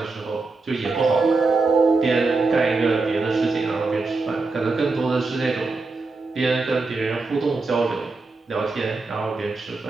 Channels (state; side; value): quieter; left; 3.7 dB